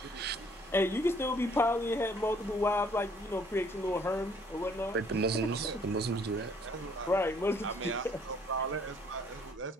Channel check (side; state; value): both; normal; correlation 0.61